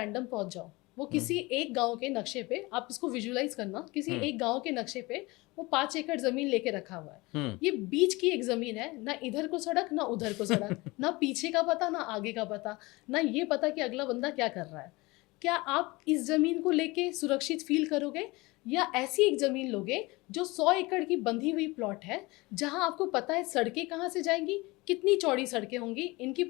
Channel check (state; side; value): quieter; right; 22.9 dB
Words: पहुंच जाओ, वो किसी एक गांव के नक्शे पे, आप इसको विजुलाइज करना, किसी एक गांव के नक्शे पे वो 5 एकड़ जमीन लेके रखा हुआ है। ये बीच की एक जमीन है, ना इधर को सड़क ना उधर को सड़क, ना पीछे का पता ना आगे का पता, ना ये पता कि अगला बंदा क्या कर रहा है। क्या आप इस जमीन को लेके सुरक्षित फील करोगे, या ऐसी एक जमीन लोगे जो 100 एकड़ की बंधी हुई प्लॉट है, जहां आपको पता है सड़कें कहाँ से जाएंगी, कितनी चौड़ी सड़कें होंगी, इनकी